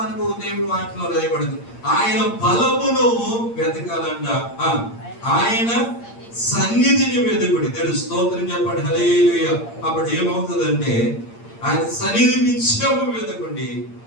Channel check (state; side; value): late; right; 8.7 ms